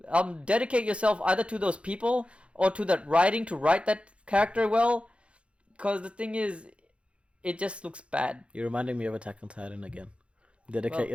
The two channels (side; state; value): left; late; 0.060 ms